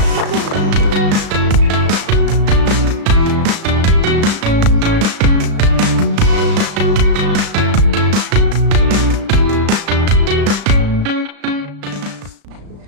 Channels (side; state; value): left; late; 35 ms